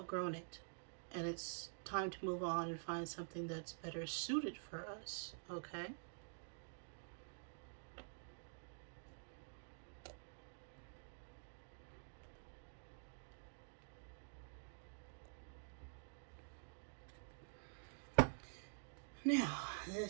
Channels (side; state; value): left; silent; digital silence